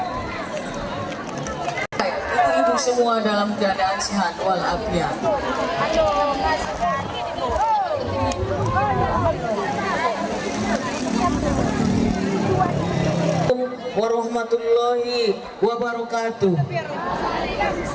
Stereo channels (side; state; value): both; identical; correlation 1.00